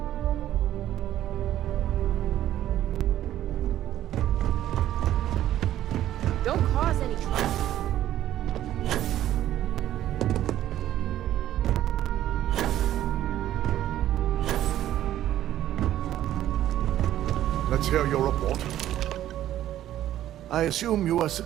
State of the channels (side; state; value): left; quieter; 12.6 dB